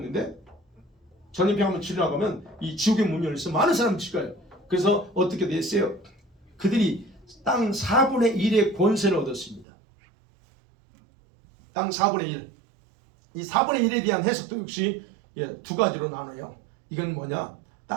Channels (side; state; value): left; drops out; at 9.7 s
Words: 전염병 한번 치료하고 가면 이 지옥의 문이 열려서 많은 사람이 죽어요. 그래서 어떻게 됐어요? 그들이 땅 4분의 1의 권세를 얻었습니다. 땅 4분의 1. 이 4분의 1에 대한 해석도 역시 두 가지로 나눠요. 이건 뭐냐?